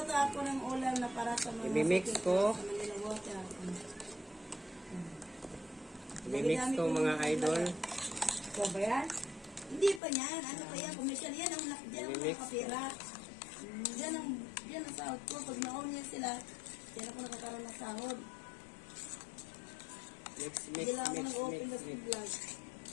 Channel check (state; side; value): drops out; right; at 10.0 s